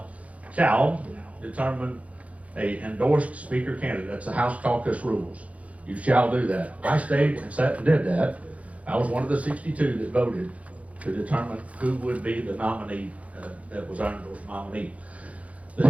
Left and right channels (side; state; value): left; late; 0.066 ms